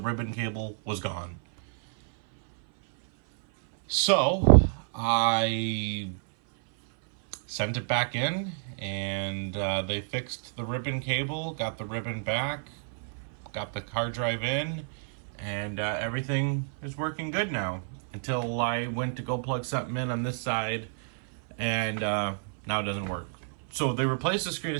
ribbon cable was gone. So I sent it back in, and they fixed the ribbon cable, got the ribbon back, got the hard drive in, and everything is working good now. Until I went to go plug something in on this side, and now it doesn't work. So they replaced the screen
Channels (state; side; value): silent; left; 58 dB below the other